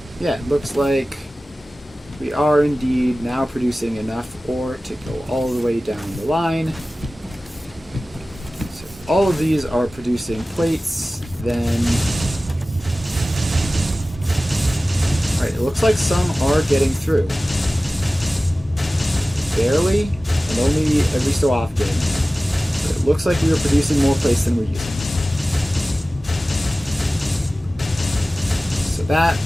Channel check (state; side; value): normal; both; correlation 0.96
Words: Yeah, it looks like we are indeed now producing enough ore to go all the way down the line. So if all of these are producing plates, then... Alright, it looks like some are getting through. Barely, and only every so often. But it looks like we are producing more plates than we're using. So that